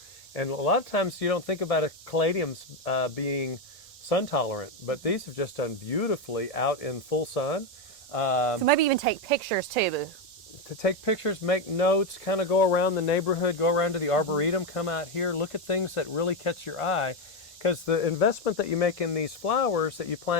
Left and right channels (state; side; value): normal; both; correlation 0.08